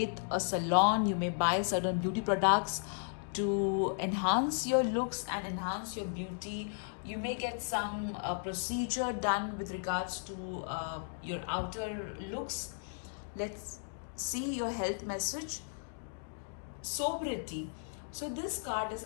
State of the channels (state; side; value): silent; right; digital silence